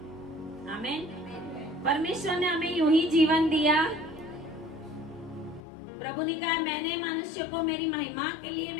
आमीन। परमेश्वर ने हमें यूं ही जीवन दिया। प्रभु ने कहा मैंने मनुष्य को मेरी महिमा के लिए,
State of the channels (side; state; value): right; drops out; at 5.6 s